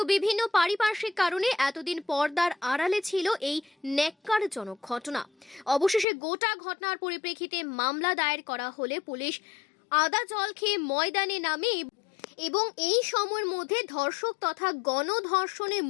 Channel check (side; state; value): right; drops out; at 6.1 s